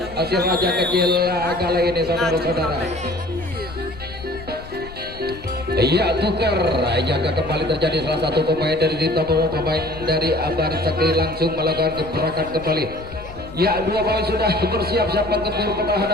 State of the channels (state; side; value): noise; left; rumble, 16 dB below the sound